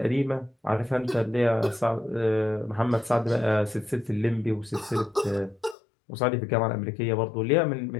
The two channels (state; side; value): drops out; right; at 5.8 s